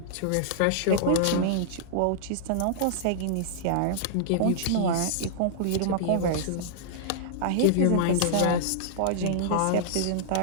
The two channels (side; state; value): both; different; correlation -0.02